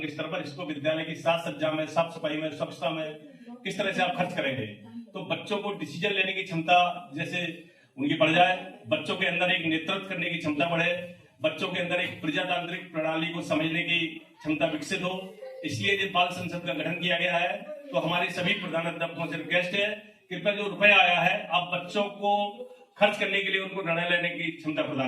स्तर पर, इसको विद्यालय की साज सज्जा में, साफ सफाई में, स्वच्छता में किस तरह से आप खर्च करेंगे। तो बच्चों को डिसीजन लेने की क्षमता जैसे उनकी बढ़ जाए, बच्चों के अंदर एक नेतृत्व करने की क्षमता बढ़े, बच्चों के अंदर एक प्रजातांत्रिक प्रणाली को समझने की क्षमता विकसित हो, इसलिए जो बाल संसद का गठन किया गया है। तो हमारे सभी प्रधानाध्यापकों से रिक्वेस्ट है, कृपया जो रुपया आया है आप बच्चों को खर्च करने के लिए उनको निर्णय लेने की क्षमता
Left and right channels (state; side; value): identical; both; correlation 1.00